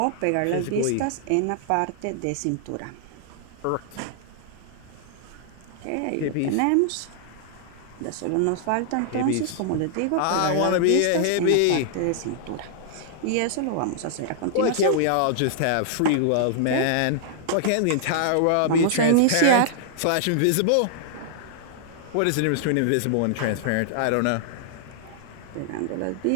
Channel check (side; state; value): both; different; correlation -0.01